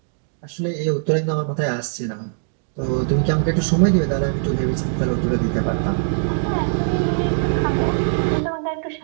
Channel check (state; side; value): silent; left; digital silence